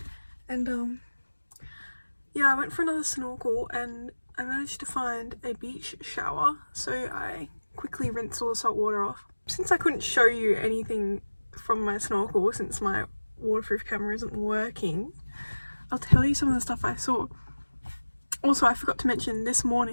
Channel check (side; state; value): both; inverted; correlation -1.00